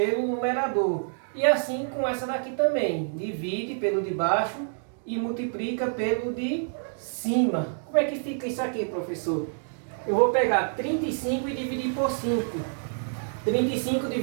numerador. E assim com essa daqui também. Divide pelo de baixo e multiplica pelo de cima. Como é que fica isso aqui, professor? Eu vou pegar 35 e dividir por 5. 35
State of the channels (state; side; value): silent; left; digital silence